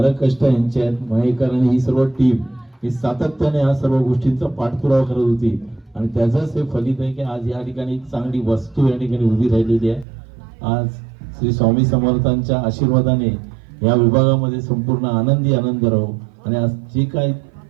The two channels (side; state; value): left; drops out; at 10.1 s